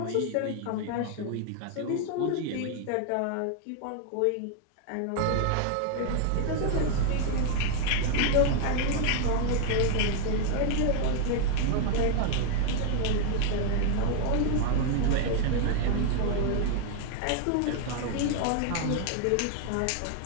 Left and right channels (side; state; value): both; different; correlation 0.01